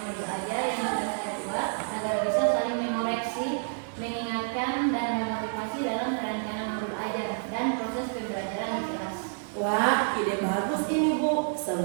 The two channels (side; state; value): left; silent; digital silence